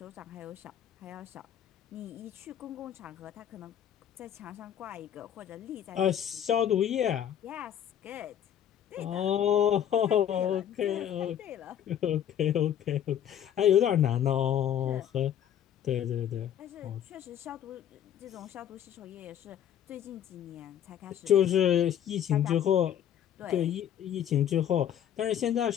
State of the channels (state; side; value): quieter; right; 10.0 dB